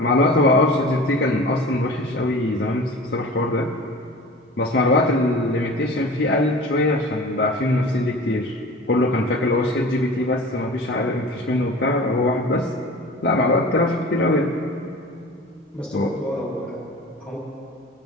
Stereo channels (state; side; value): normal; both; correlation 0.38